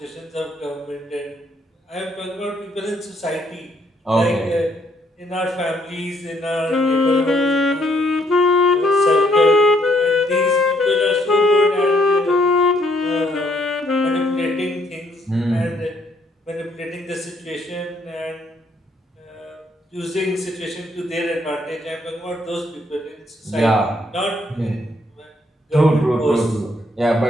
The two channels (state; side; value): normal; both; correlation 0.69